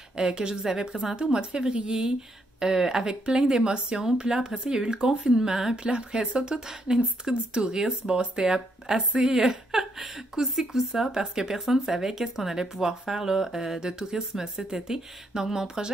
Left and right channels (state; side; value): normal; both; correlation 0.75